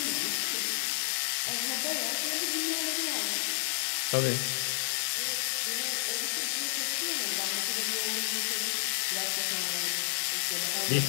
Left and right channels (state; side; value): silent; right; digital silence